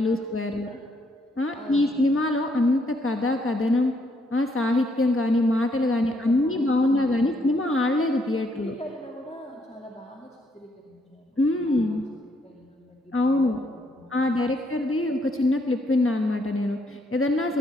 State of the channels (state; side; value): normal; both; correlation 0.72